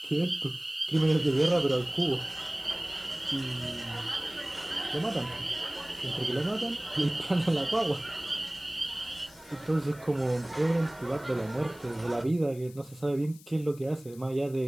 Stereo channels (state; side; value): noise; left; hiss, 22 dB below the sound